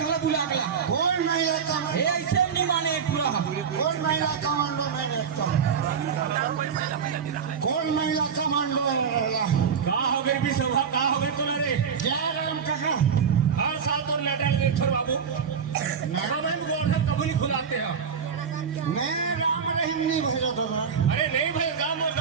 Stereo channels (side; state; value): left; quieter; 6.7 dB